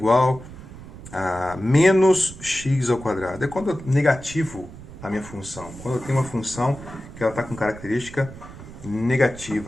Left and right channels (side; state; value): right; noise; rumble, 15 dB below the sound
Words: a menos x ao quadrado. É quando é negativo a minha função? Quando eu tenho uma função que ela está com característica